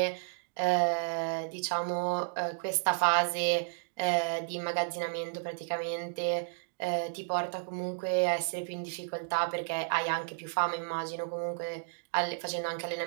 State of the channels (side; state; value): left; silent; digital silence